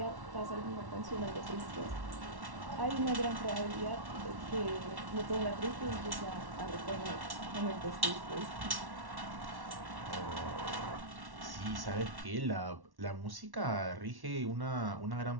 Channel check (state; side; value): late; left; 1.1 ms